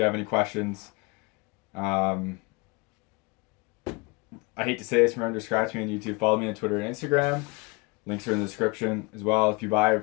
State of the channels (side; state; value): right; quieter; 27.7 dB